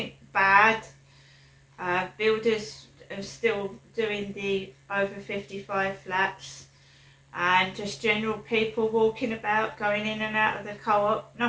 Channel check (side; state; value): both; identical; correlation 1.00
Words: bad. Builders are still doing the over 55 flats, and just general people walking about, going in and out of the co-op.